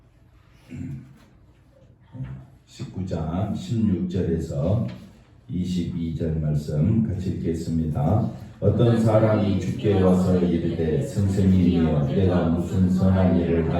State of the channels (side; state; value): both; identical; correlation 1.00